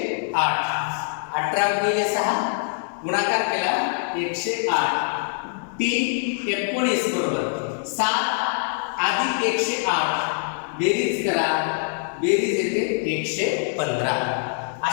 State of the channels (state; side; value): silent; right; 63 dB below the other